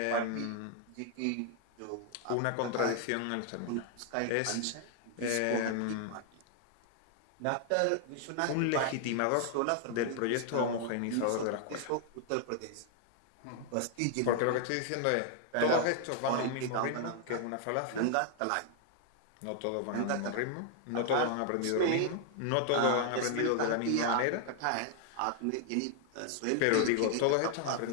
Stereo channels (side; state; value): both; different; correlation 0.00